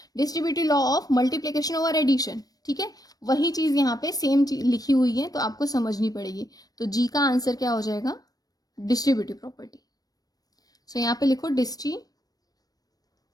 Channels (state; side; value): late; right; 0.18 ms